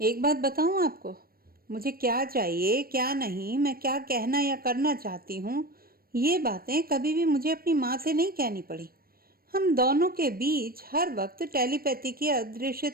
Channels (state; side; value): late; left; 0.43 ms